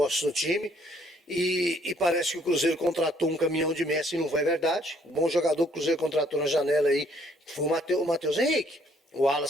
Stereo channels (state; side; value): normal; both; correlation 0.64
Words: no time. E parece que o Cruzeiro contratou um caminhão de Messi, e não foi verdade. O bom jogador que o Cruzeiro contratou na janela aí foi o Matheus Henrique. O